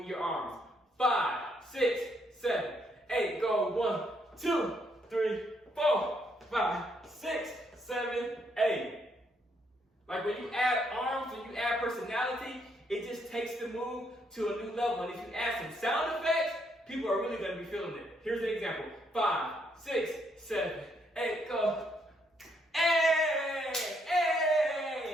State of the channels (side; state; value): both; normal; correlation 0.73